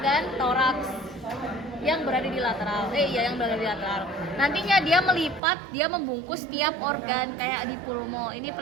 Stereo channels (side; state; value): left; drops out; at 5.4 s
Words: toraks yang berada di lateral. Yang berada di lateral. Nantinya dia melipat, dia membungkus tiap organ kayak di pulmo. Ini